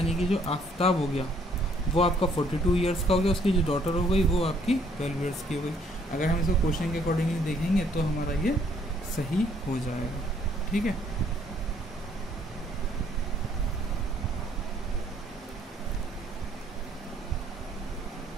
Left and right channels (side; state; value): both; normal; correlation 0.64